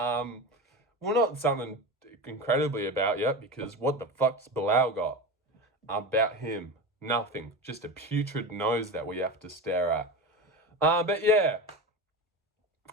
not something incredibly about you, because what the fuck's Bilal got about him? Nothing. Just a putrid nose that we have to stare at. But yeah,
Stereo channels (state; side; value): normal; both; correlation 0.25